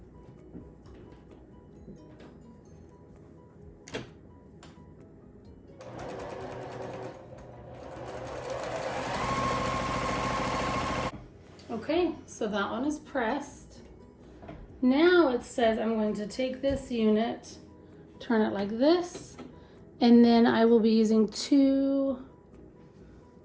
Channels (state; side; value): identical; both; correlation 1.00